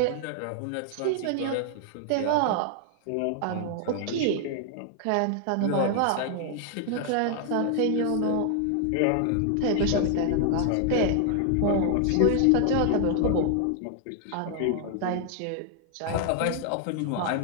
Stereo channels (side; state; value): both; different; correlation 0.00